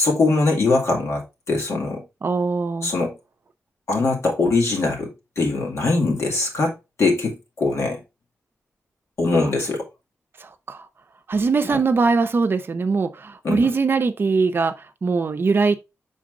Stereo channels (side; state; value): both; normal; correlation 0.78